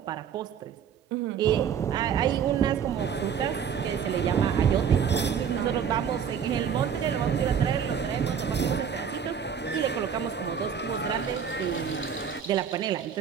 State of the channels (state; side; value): quieter; left; 7.7 dB